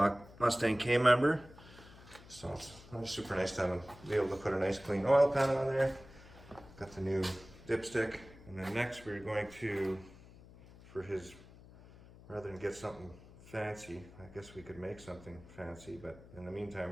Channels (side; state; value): left; noise; hum, 20 dB below the sound